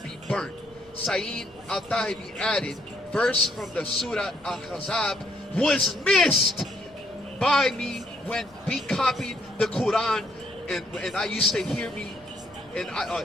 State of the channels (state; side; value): noise; left; rumble, 29 dB below the sound